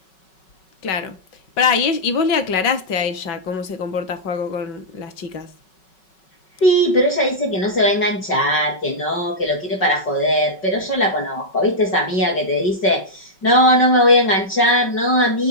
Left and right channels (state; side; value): late; right; 5.3 ms